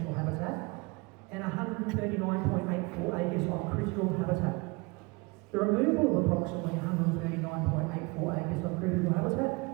habitat and 139.84 acres of critical habitat. The removal of approximately 139.84 acres of critical habitat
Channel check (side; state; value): left; quieter; 26.7 dB